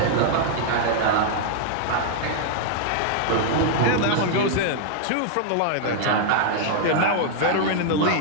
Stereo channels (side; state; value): both; different; correlation -0.01